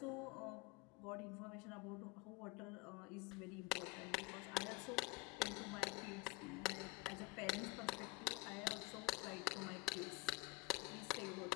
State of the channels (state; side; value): quieter; right; 22.7 dB